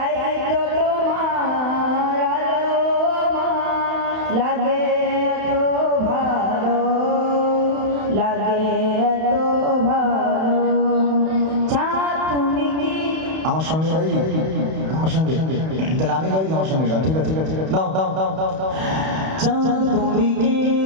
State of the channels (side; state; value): left; late; 31 ms